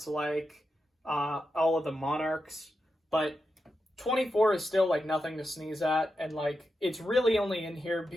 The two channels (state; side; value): normal; both; correlation 0.88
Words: like all of the Monarchs, but 24 is still like nothing to sneeze at, and like it's really only in here